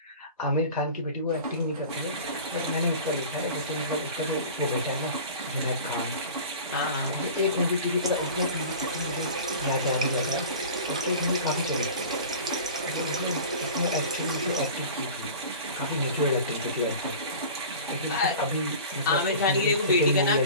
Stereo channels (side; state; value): both; inverted; correlation -0.39